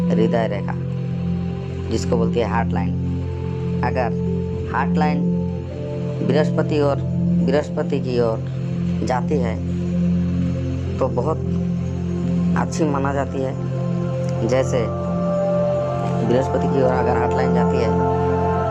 हृदय रेखा जिसको बोलती है हार्ट लाइन। अगर हार्ट लाइन बृहस्पति की ओर जाती है तो बहुत अच्छी माना जाती है। जैसे बृहस्पति की ओर अगर हार्ट लाइन जाती है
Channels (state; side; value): identical; both; correlation 1.00